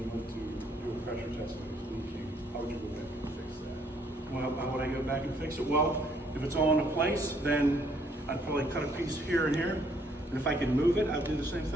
went to do a pressure test and it was leaking, how would you go back and fix that? Well, how would I go back and fix it? Well, if it's all in place, then I'd probably cut a piece here and here. And if I could move it, I'd do the same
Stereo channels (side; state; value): both; normal; correlation 0.66